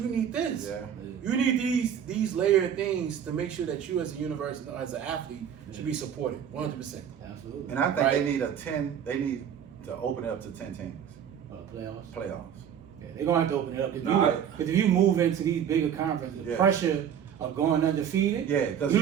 you need this. Yeah. You need these layered things to make sure that you as a university, as an athlete, should be supported 100%. Absolutely. And I think Right. they need to open it up to 10 teams. Playoffs. Playoffs. Yeah, they're gonna have to open it up. Nah, Because if you move into these bigger conferences, the Yeah. pressure of going undefeated, Yeah, 'cause you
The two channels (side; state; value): left; quieter; 8.7 dB